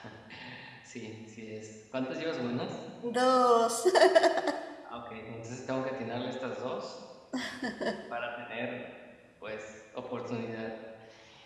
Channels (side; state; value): both; identical; correlation 1.00